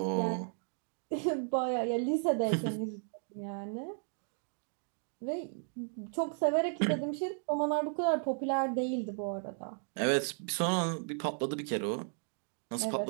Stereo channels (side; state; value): left; silent; 55 dB below the other